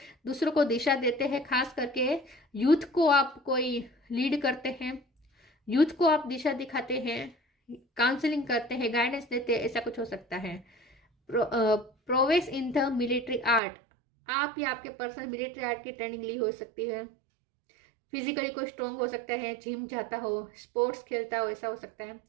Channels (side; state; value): left; drops out; at 13.6 s